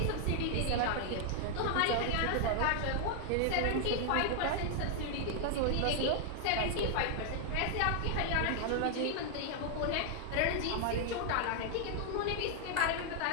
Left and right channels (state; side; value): different; both; correlation 0.00